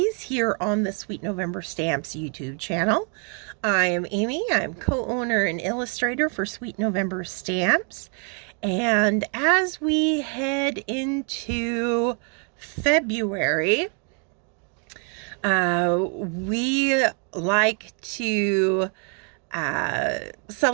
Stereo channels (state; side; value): quieter; left; 39.8 dB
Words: here on the Sweet November Stamps YouTube channel. I am Amy. I'm co-owner and illustrator for Sweet November Stamps. And as we head into February, we like to